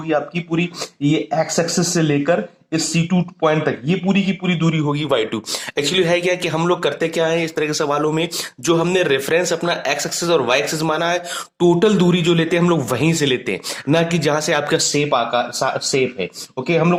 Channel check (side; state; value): both; identical; correlation 1.00